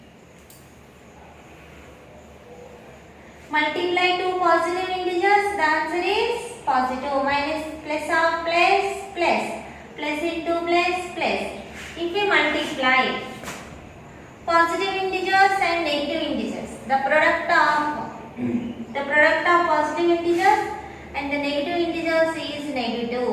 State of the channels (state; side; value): identical; both; correlation 1.00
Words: multiply two positive integers, the answer is positive. Minus, plus of plus, plus. Plus into plus, plus. If we multiply positive integers and negative integers, the product of positive integers and the negative integers is